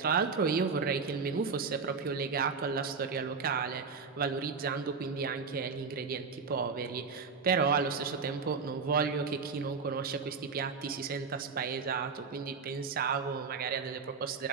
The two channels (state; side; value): quieter; left; 5.2 dB